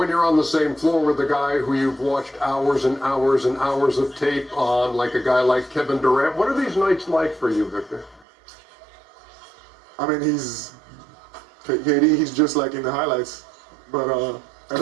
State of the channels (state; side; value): drops out; left; at 8.2 s